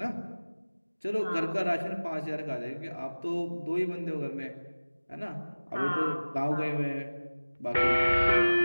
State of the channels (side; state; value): both; inverted; correlation -1.00